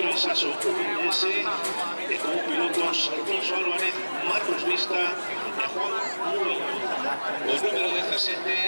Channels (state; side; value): inverted; both; correlation -1.00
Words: Sasso S, como pilotos Alfonso Álvarez, Marcos Vista y Juan Murillo. Pues número